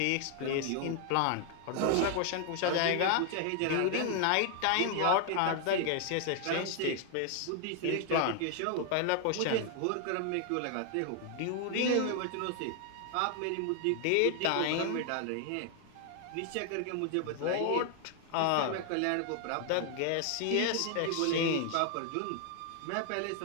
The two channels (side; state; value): both; different; correlation 0.00